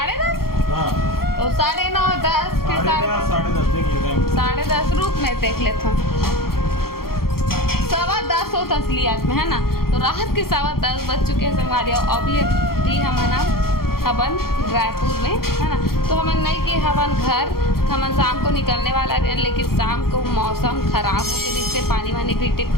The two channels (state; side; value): late; right; 0.93 ms